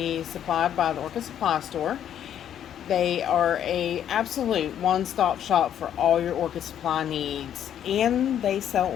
supplied by the Orchid Supply Store. They are a absolute one-stop shop for all your orchid supply needs, and they sell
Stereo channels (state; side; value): quieter; right; 10.0 dB